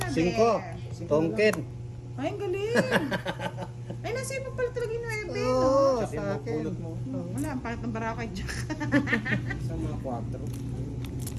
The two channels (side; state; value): both; identical; correlation 1.00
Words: 5. Tongken. Ay, ang galing. Ay, nasa iba pala talaga yung 9, no? Oo, Kasi sa akin. pulot mo. Wala, ang pangit ng barako kay Jack. Sa mga 4.